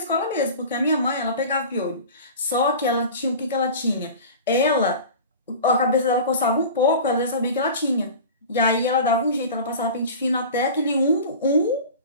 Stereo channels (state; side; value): inverted; both; correlation -0.36